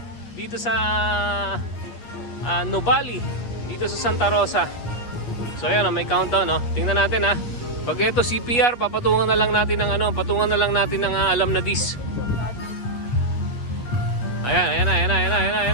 Dito sa Nuvali. Dito sa Santa Rosa. So ayan o, may countdown o. Tingnan natin ha. Pag ito CPR, papatungan na lang natin ng patungan na lang natin ng alam na dis. Ayan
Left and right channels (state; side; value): late; right; 8.4 ms